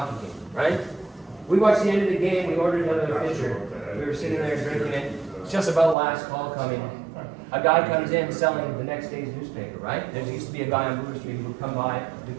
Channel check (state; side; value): drops out; left; at 6.0 s